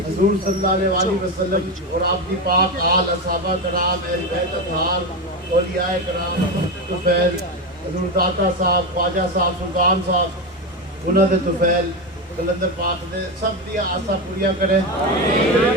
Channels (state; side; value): normal; both; correlation 0.15